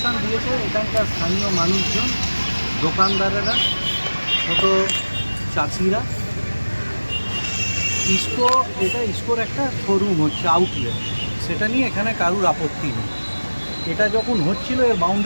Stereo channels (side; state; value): both; inverted; correlation -1.00